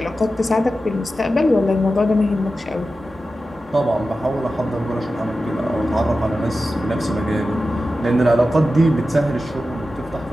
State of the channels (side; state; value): both; normal; correlation 0.93